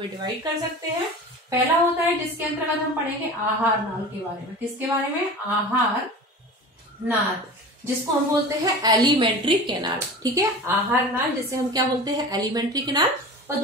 डिवाइड कर सकते हैं। पहला होता है जिसके अंतर्गत हम पढ़ेंगे आहार नाल के बारे में। किसके बारे में, आहार नाल, जिसको हम बोलते हैं एलिमेंट्री कैनाल। ठीक है, आहार नाल जिसे हम क्या बोलते हैं, एलिमेंट्री कैनाल। और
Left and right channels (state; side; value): normal; both; correlation 0.35